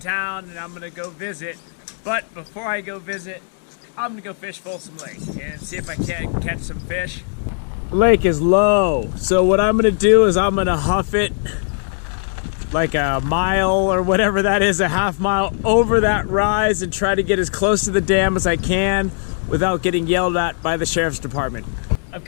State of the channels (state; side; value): silent; right; digital silence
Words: and I'm gonna go visit. But before I go visit, I'm gonna go fish Folsom Lake and see if I can catch some fish. The lake is low, so what I'm gonna do is I'm gonna huff it like a mile or whatever that is, a half mile over that rise, and try to get as close to the dam as I can without getting yelled at by the sheriff's department. I've